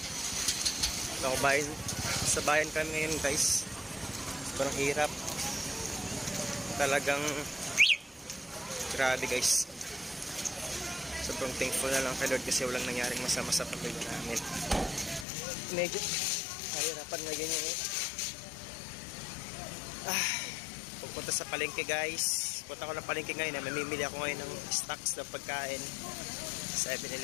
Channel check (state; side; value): drops out; right; at 15.2 s